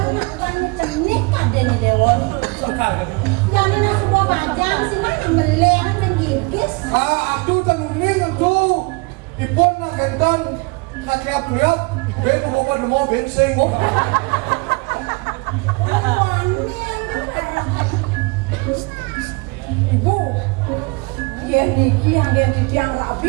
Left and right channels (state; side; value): quieter; left; 28.2 dB